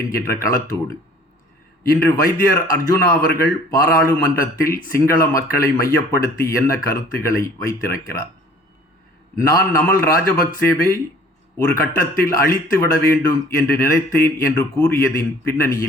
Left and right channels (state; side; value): normal; both; correlation 0.52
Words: என்கின்ற களத்தோடு இன்று வைத்தியர் அர்ஜுனா அவர்கள் பாராளுமன்றத்தில் சிங்கள மக்களை மையப்படுத்தி என்ன கருத்துக்களை வைத்திருக்கிறார். நான் நமல் ராஜபக்சேவை ஒரு கட்டத்தில் அழித்து விட வேண்டும் என்று நினைத்தேன் என்று கூறியதின்